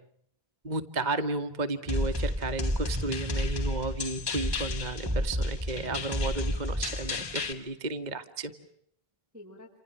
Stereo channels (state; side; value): late; left; 2.0 ms